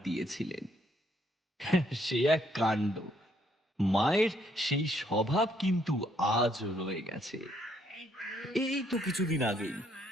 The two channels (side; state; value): both; normal; correlation 0.70